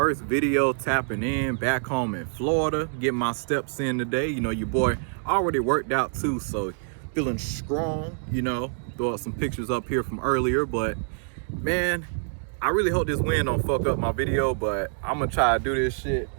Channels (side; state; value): left; silent; 57 dB below the other